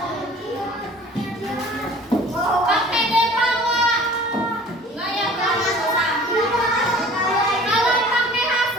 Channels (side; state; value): both; normal; correlation 0.47